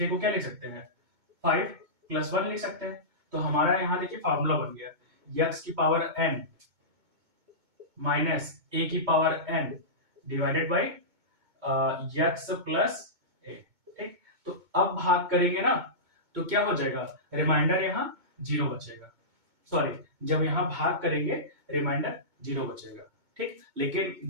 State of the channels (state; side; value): late; left; 2.2 ms